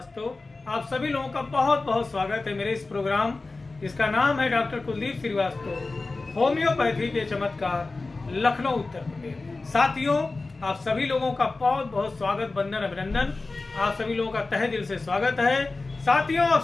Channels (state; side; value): quieter; right; 3.5 dB